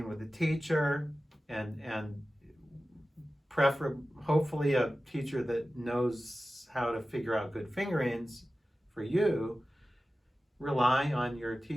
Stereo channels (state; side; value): normal; both; correlation 0.95